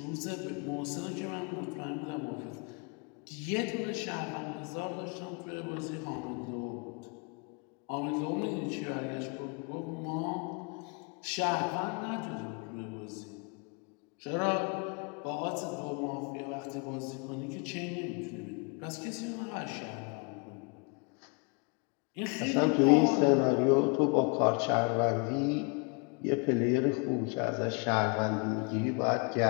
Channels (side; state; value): right; quieter; 33.2 dB